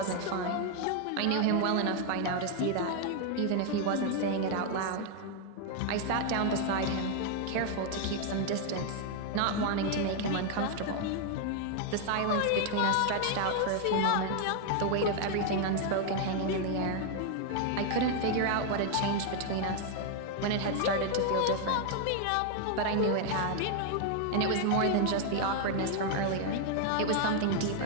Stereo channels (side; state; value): both; different; correlation 0.00